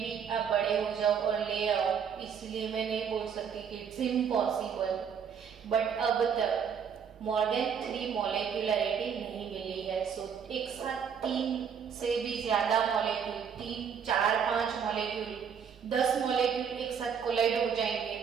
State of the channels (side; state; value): left; quieter; 7.3 dB